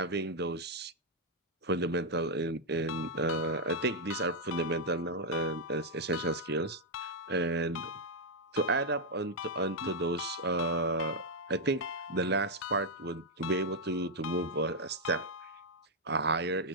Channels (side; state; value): both; normal; correlation -0.02